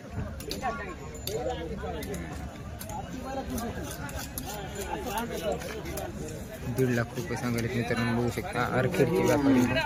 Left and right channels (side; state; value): both; identical; correlation 1.00